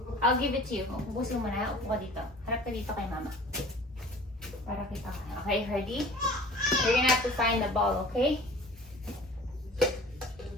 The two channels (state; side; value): normal; both; correlation 0.44